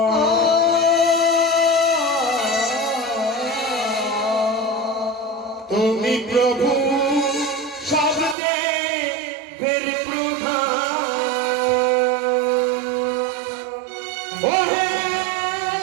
তুমি প্রভু শব্দে বীর প্রধান। ওহে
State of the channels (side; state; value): left; drops out; at 8.3 s